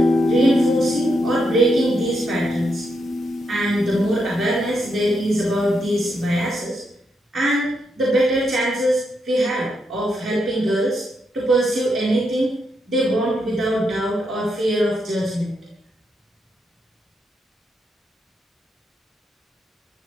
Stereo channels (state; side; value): normal; both; correlation 0.81